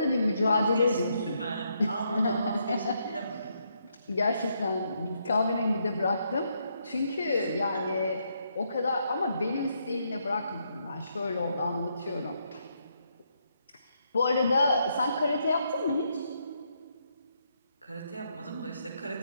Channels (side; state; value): both; inverted; correlation -0.77